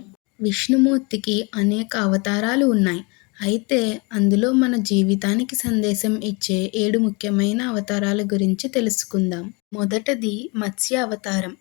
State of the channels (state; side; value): quieter; right; 29.4 dB